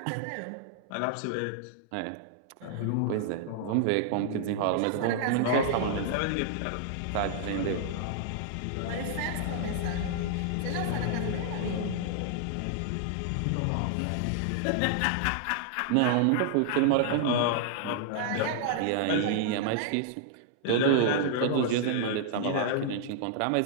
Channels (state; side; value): different; both; correlation -0.01